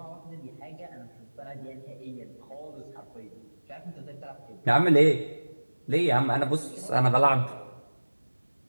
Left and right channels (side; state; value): both; inverted; correlation -1.00